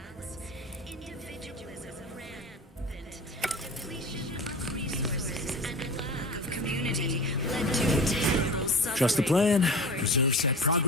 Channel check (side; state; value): both; normal; correlation 0.34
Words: Trust the plan, preserve set